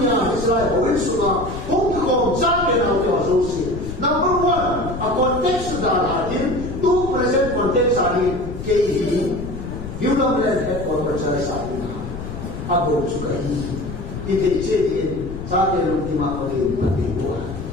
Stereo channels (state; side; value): noise; left; rumble, 9 dB below the sound